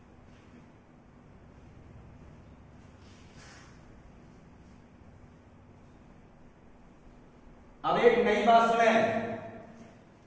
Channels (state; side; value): identical; both; correlation 1.00